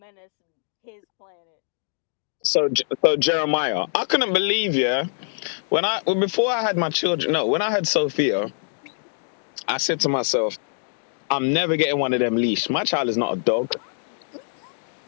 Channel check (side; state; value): right; silent; digital silence